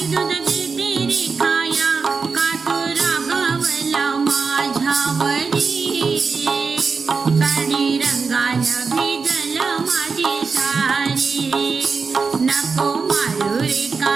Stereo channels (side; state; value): left; quieter; 4.9 dB